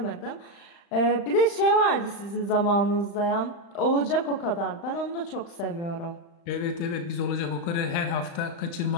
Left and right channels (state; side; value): late; right; 35 ms